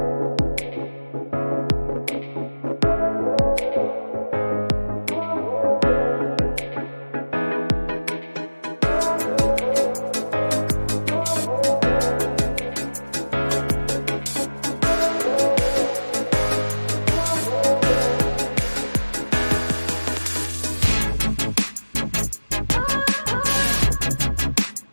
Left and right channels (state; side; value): inverted; both; correlation -1.00